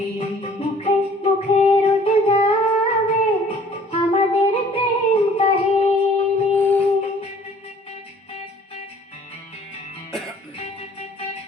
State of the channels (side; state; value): both; normal; correlation 0.54